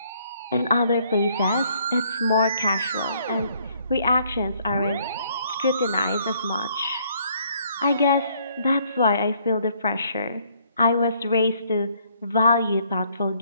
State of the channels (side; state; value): both; inverted; correlation -0.66